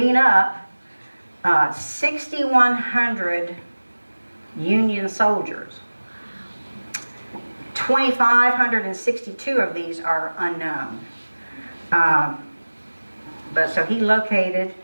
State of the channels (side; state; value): both; inverted; correlation -1.00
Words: up 6,100 Union soldiers. 2,562 of these are unknown. But so he located,